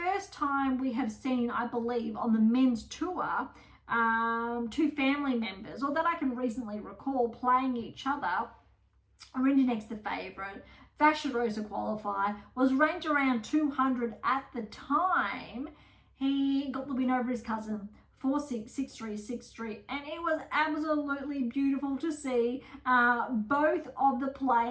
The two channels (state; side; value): identical; both; correlation 1.00